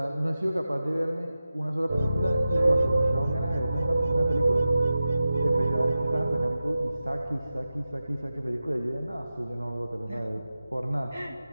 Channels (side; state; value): both; inverted; correlation -0.93